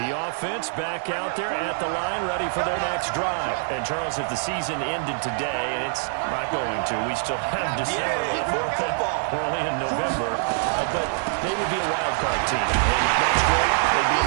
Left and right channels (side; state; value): left; silent; digital silence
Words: offense back out there at the line, ready for their next drive. And, Charles, if the season ended today, and it's not going to, we still have December left. We're only in November. But they would be a wild card team. And that's great. They'd be